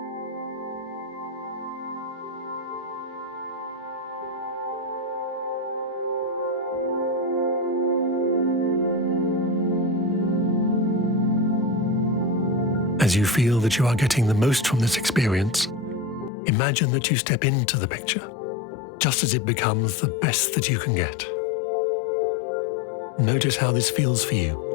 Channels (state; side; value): drops out; right; at 16.3 s